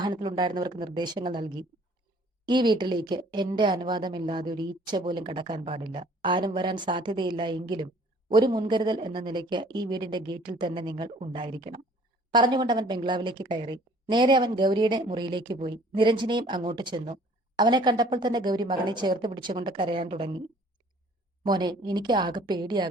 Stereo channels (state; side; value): normal; both; correlation 0.55